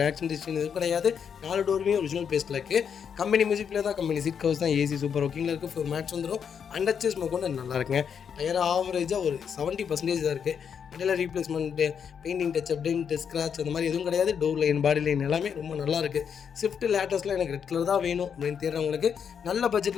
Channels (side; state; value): right; quieter; 7.3 dB